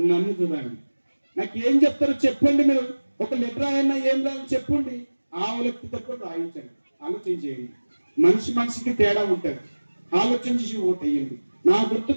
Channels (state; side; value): inverted; both; correlation -1.00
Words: చూడండి. నాకు ఏం చెప్తారో చెప్పండి. మీరు ఒక లెటర్ రాయన్నా ఏం రాయని చెప్పండి. ఆవులకి తక్కువ రాయించండి, ఆలోచించేయండి. మనిషికి తేడా ఉంటుంది. ఆలోచించి ఓటు వేయండి. నా గుర్తు